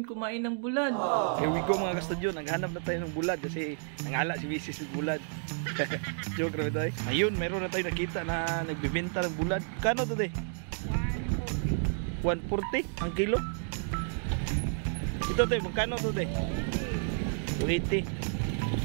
kumain ng bulad. Here we go mga kastudyo, naghanap na tayo ng bulad kasi nangala si Mrs. ng bulad. Joke na tayo. Ayun, meron na tayo nakita na nagbibenta ng bulad. Kano to de? 140 ang kilo. Ito de, magkano to de? 280.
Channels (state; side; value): silent; left; 57 dB below the other